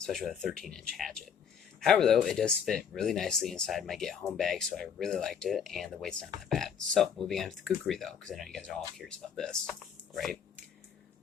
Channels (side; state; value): right; quieter; 7.4 dB